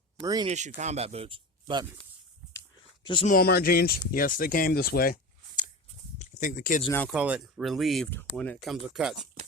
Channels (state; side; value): normal; both; correlation 0.29